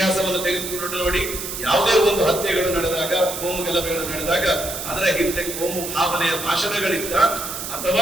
ತೆಗೆದುಕೊಂಡು ನೋಡಿ, ಯಾವುದೇ ಒಂದು ಹತ್ಯೆಗಳು ನಡೆದಾಗ, ಕೋಮು ಗಲಭೆಗಳು ನಡೆದಾಗ ಅದರ ಹಿಂದೆ ಕೋಮು ಭಾವನೆಯ ಭಾಷಣಗಳಿಂದ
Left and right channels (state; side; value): noise; right; hiss, 6 dB below the sound